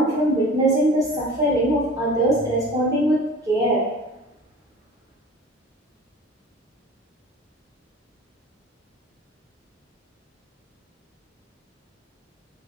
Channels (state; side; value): normal; both; correlation 0.41